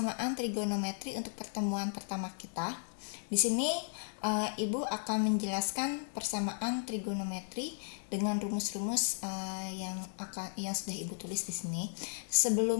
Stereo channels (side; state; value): right; silent; digital silence